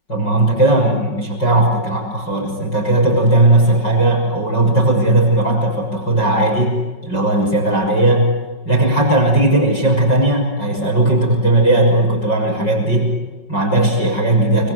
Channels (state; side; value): late; right; 5.4 ms